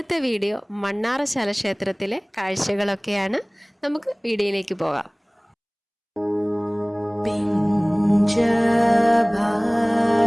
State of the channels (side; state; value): both; identical; correlation 1.00